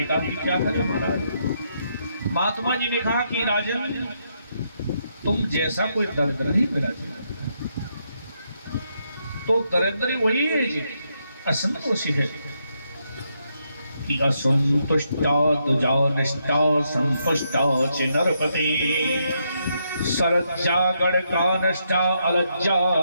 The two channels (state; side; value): inverted; both; correlation -0.78